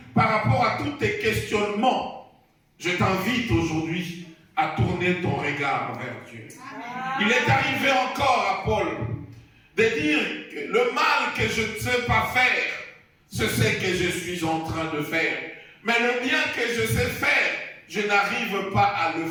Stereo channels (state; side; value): identical; both; correlation 1.00